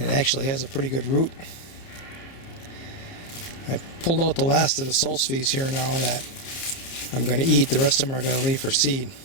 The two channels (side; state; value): right; late; 30 ms